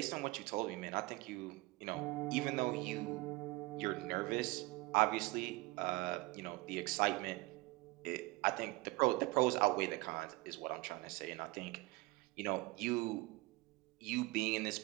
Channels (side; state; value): left; quieter; 22.6 dB